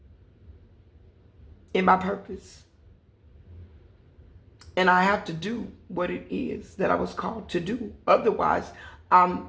in my purpose. And I have to do what it is that I was called to do. Otherwise, I'm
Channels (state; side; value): identical; both; correlation 1.00